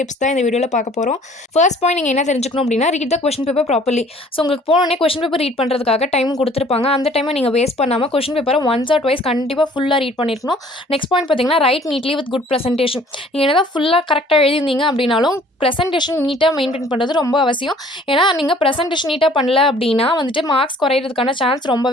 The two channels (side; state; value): both; normal; correlation 0.54